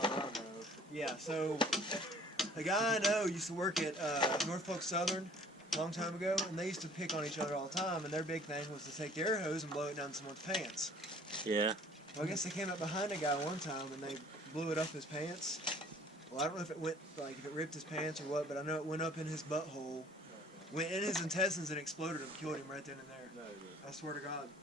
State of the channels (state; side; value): normal; both; correlation 0.53